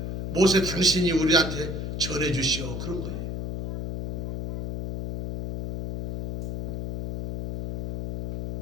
모세 당신이 우리한테 전해주시오 그런 거예요.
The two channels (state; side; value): noise; left; hum, 5 dB below the sound